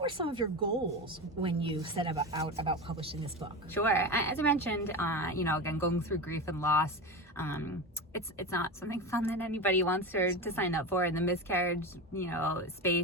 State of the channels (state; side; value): normal; both; correlation 0.22